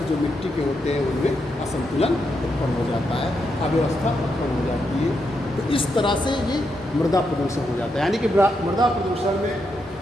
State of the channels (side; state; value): both; normal; correlation 0.82